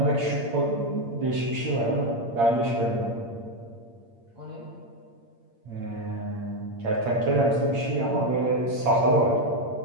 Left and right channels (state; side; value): late; left; 8.7 ms